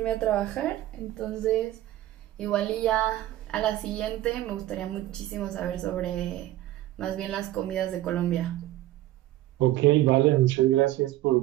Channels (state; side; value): quieter; left; 14.9 dB